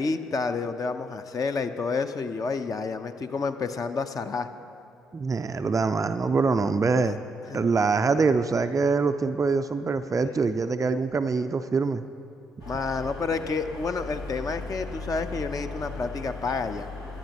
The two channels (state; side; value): normal; both; correlation 0.78